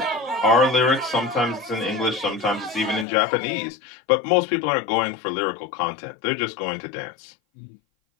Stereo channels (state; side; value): drops out; right; at 3.1 s